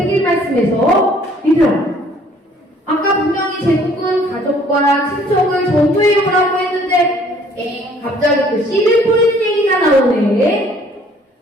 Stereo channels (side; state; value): both; normal; correlation 0.58